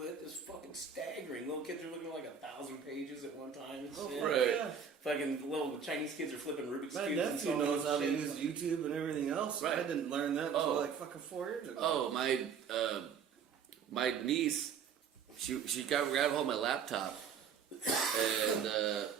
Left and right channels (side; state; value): left; quieter; 6.8 dB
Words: is fucking staggering. Little kids are looking at like 1,000 pages at one time and shit. right. Yeah. Fucking little Chinese kids are flipping Rubik's My Cubes and nephew so knows how to shit. use YouTube and everything else. Right. I didn't learn that until Oh. like fucking 4 years ago. Oh, my niece, she got grabbed hold of my laptop, and